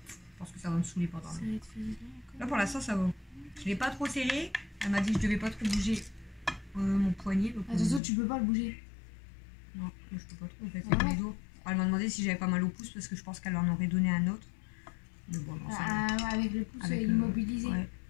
je pense que ça va me saouler pendant. Là pour l'instant ça va. Je l'ai pas trop serré. Elle m'a dit que je devais pas trop bouger mon poignet. Attention tu peux pas le bouger. Non je peux pas trop en fait avec mes doigts. Elle m'a demandé si j'avais pas mal au pouce parce que je pense qu'elle en aurait donné un autre. Mais bon non ça va. Avec le pouce immobilisé. Ouais.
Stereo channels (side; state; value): right; drops out; at 8.0 s